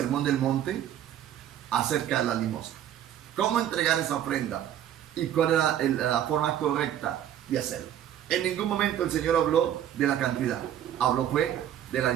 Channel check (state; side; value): quieter; left; 10.8 dB